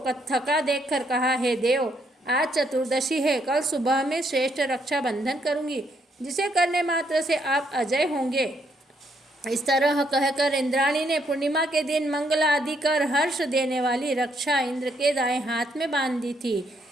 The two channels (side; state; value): both; normal; correlation 0.73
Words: थका देखकर कहा, हे देव, आज चतुर्दशी है, कल सुबह में श्रेष्ठ रक्षाबंधन करूंगी, जिसे करने मात्र से आप अजय होंगे। इस तरह कहकर इंद्राणी ने पूर्णिमा के दिन मंगल आदि कर हर्ष देने वाली रक्षा इंद्र के दाएं हाथ में बांध दी थी।